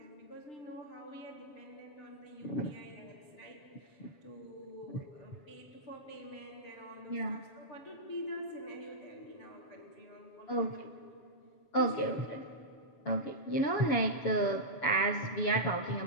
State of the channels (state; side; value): late; right; 7.1 ms